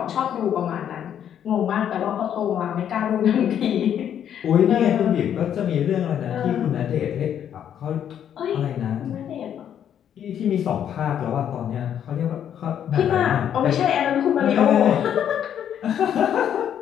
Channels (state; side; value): quieter; right; 9.5 dB